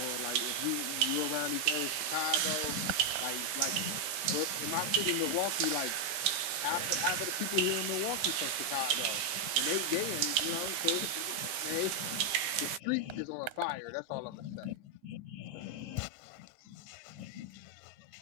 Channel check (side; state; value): left; late; 15 ms